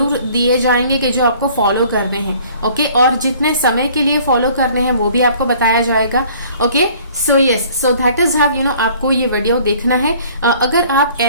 दिए जाएंगे कि जो आपको फॉलो करने हैं। ओके, और जितने समय के लिए फॉलो करने हैं वो भी आपको बताया जाएगा। Okay, so yes, so that is how आपको ये वीडियो देखना है। अगर आप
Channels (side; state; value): both; inverted; correlation -0.54